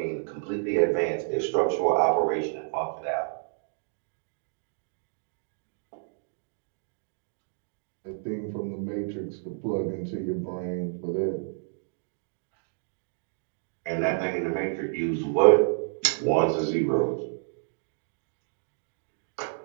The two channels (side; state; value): left; silent; digital silence